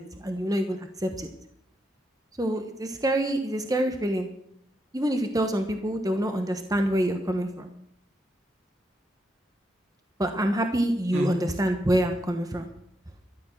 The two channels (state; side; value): normal; both; correlation 0.81